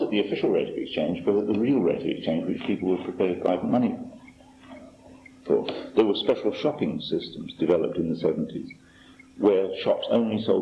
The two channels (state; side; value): identical; both; correlation 1.00